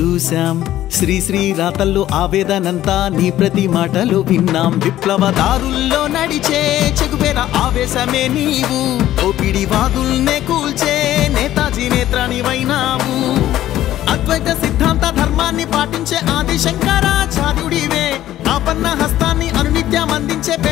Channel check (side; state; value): right; quieter; 13.4 dB